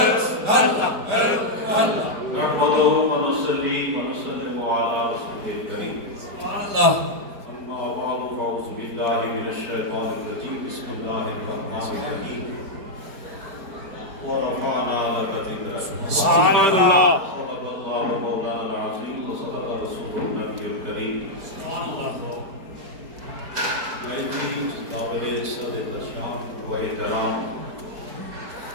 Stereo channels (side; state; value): left; late; 5.0 ms